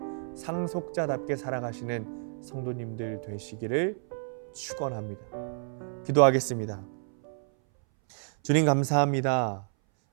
상속자답게 살아가시는 성도님들 되시기를 축원합니다. 기도하겠습니다. 주님 감사합니다.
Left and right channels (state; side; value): silent; left; 58 dB below the other